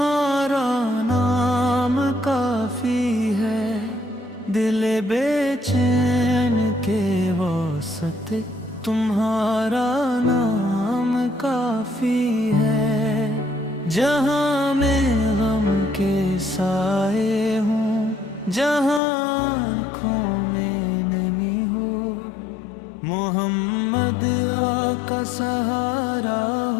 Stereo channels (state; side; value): drops out; right; at 19.0 s